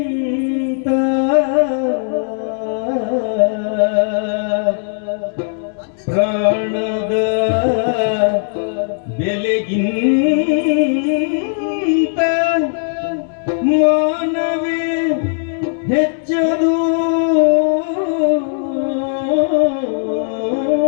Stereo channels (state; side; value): silent; right; digital silence